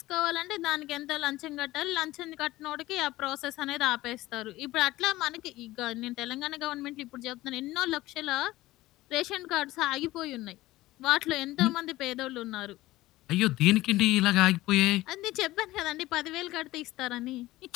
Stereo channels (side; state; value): right; quieter; 17.5 dB